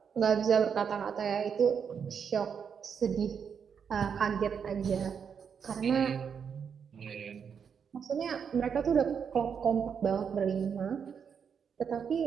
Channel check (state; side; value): quieter; left; 7.0 dB